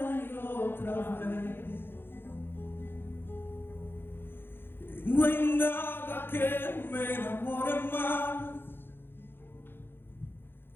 y otra vez. No hay nada que me enamore más,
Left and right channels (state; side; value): late; right; 0.10 ms